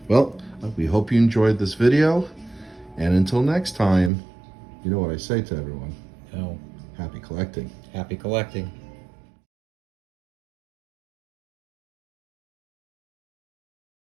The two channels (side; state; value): left; drops out; at 4.1 s